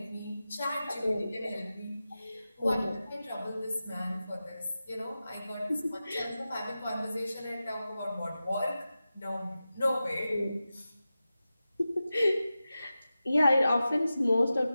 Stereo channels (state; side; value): inverted; both; correlation -0.94